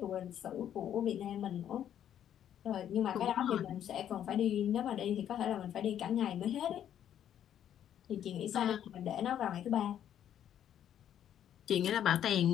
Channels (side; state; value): right; quieter; 10.2 dB